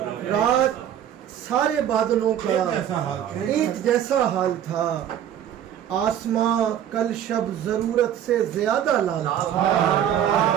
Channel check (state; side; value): quieter; left; 10.1 dB